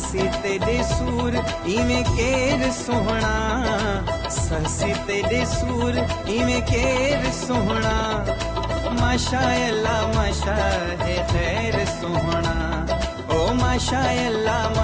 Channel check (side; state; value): both; identical; correlation 1.00